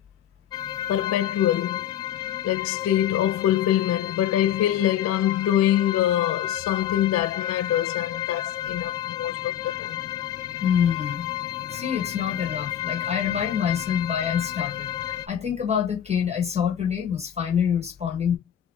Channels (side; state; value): right; quieter; 10.4 dB